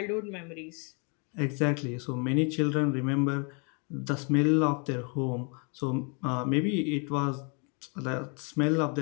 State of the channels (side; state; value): right; quieter; 36.2 dB